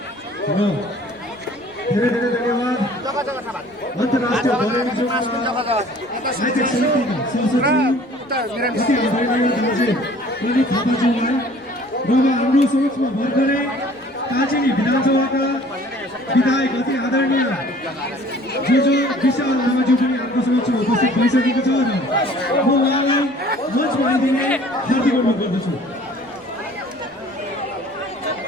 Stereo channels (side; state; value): right; noise; rumble, 30 dB below the sound